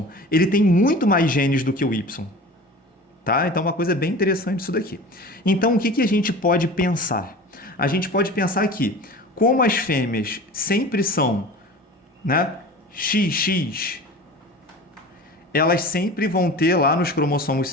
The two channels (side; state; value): both; normal; correlation 0.37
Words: ele tem muito mais genes do que o Y. Tá? Então, uma coisa bem interessante isso daqui. Então, o que a gente pode pensar? A gente pode pensar que, como as fêmeas sempre são, né, XX, elas sempre vão ter lá nos cromossomos